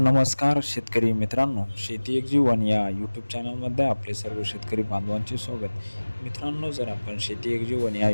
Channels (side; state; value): both; inverted; correlation -1.00